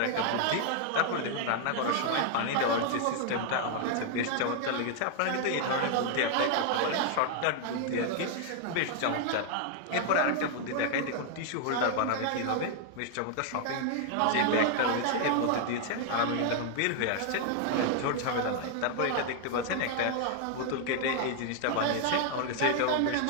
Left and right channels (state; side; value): different; both; correlation 0.00